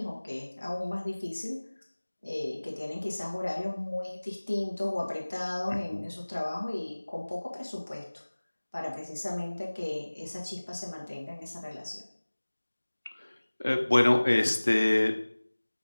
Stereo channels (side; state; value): both; inverted; correlation -1.00